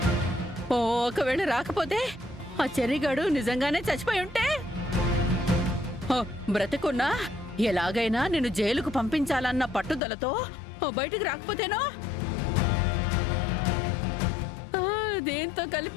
ఒకవేళ రాకపోతే ఆ చెర్రిగాడు నిజంగానే చచ్చిపోయి ఉంటే బ్రతికున్నా ఎలాగైనా నిన్ను జైలుకు పంపించాలన్న పట్టుదలతో బయటికి రాకపోతేనో దీంతో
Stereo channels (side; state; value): right; drops out; at 10.0 s